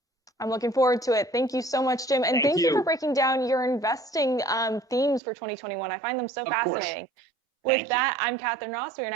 I'm looking forward to it. Thank you so much, Jim. And thank you for breaking down your investing themes for 2021. I find them so fascinating. With that, I'm Katherine Ross. We are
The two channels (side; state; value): left; drops out; at 5.2 s